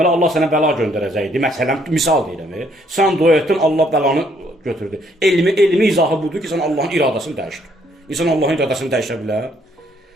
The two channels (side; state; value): both; normal; correlation 0.68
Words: Allah sənə bəla göndərəcəkdi. Məsələn misal deyirəm. Sən dua etdin, Allah bəlanı götürdü. Elmi izahı budur ki, sən Allahın iradəsini dəyişdir. İnsan Allahın iradəsini dəyişə bilər.